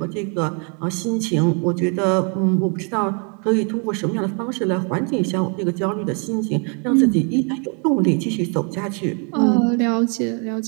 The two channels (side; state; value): left; quieter; 37.5 dB